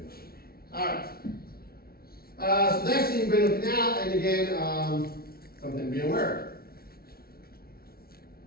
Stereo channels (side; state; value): right; late; 0.44 ms